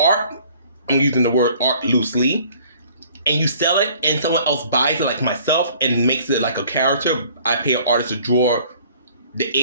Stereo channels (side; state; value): both; inverted; correlation -0.55